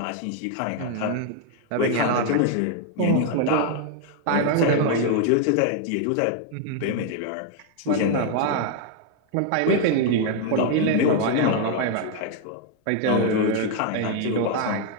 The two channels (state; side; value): different; both; correlation 0.00